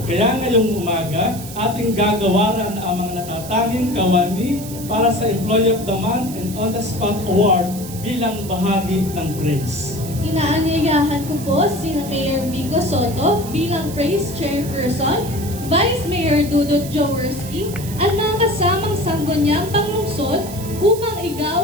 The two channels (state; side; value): noise; right; hiss, 13 dB below the sound